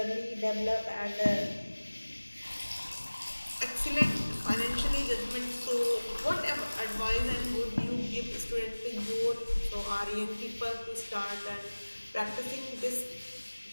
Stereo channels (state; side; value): inverted; both; correlation -1.00